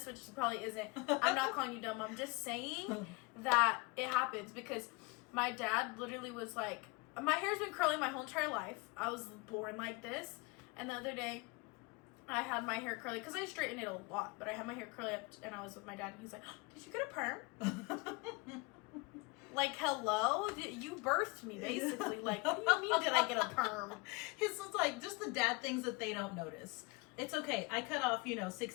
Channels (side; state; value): right; quieter; 27.1 dB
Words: which he probably isn't, I'm not calling you dumb. I'm just saying that it happens because my dad literally was like, my hair's been curly my whole entire life. I was born like this, and the other day, I had my hair curly because I straighten it a lot, but I had my hair curly up, and I was with my dad, and he's like, "Did you get a perm?" Like, hello? You birthed me, basically. Like, what do you mean did I get a perm? It's like just the dad things that they don't notice. It's okay. I cut off,